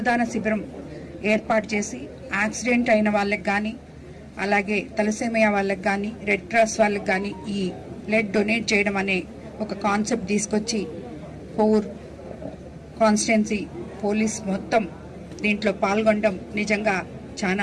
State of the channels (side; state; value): both; identical; correlation 1.00